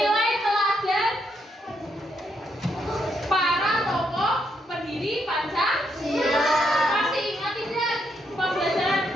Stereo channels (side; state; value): both; normal; correlation 0.77